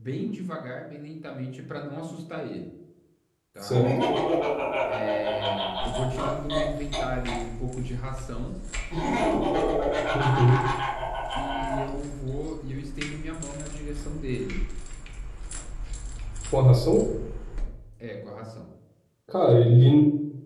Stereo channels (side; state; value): both; identical; correlation 1.00